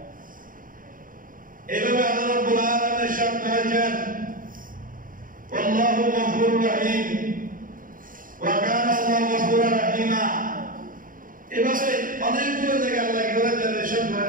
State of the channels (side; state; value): left; late; 0.40 ms